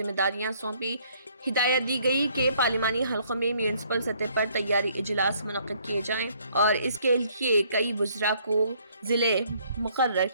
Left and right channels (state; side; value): inverted; both; correlation -0.64